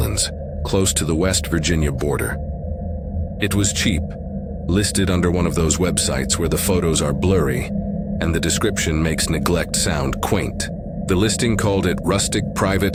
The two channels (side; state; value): both; identical; correlation 1.00